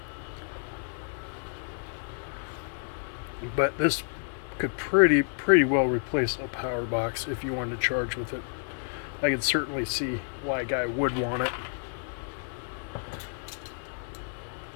But this could pretty well replace a power box if you wanted to charge with it. I could certainly see why a guy would want it.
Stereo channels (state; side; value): silent; right; digital silence